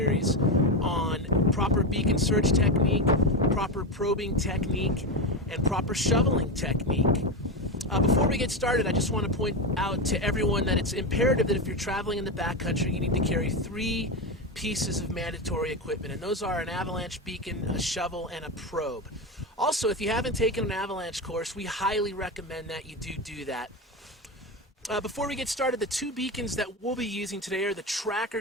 on proper beacon search technique, proper probing technique, and proper shoveling technique. Before we get started, I just want to point out to everyone that it's imperative that if you're traveling in the backcountry, you need to carry three pieces of mandatory equipment, and those are an avalanche beacon, a shovel, and a probe. Also, if you haven't taken an avalanche course, we highly recommend that you do that. Before we get started, the two beacons that we'll be using today are the Tracker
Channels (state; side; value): normal; both; correlation 0.15